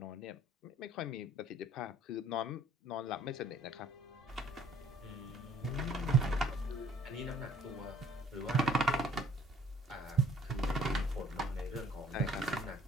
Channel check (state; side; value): normal; both; correlation 0.57